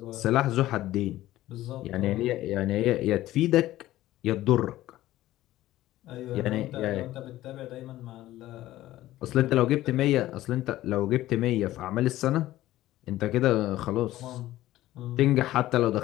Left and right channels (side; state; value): right; quieter; 15.3 dB